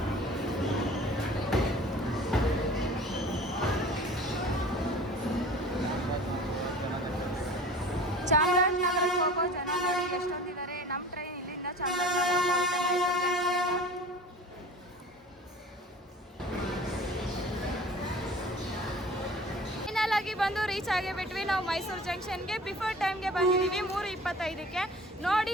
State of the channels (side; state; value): both; normal; correlation 0.43